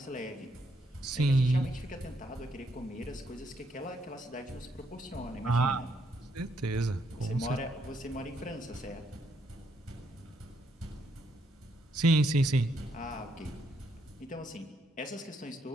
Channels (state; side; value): normal; both; correlation 0.74